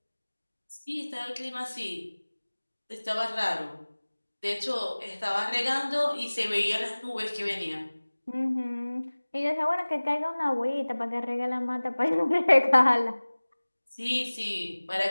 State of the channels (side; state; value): both; inverted; correlation -1.00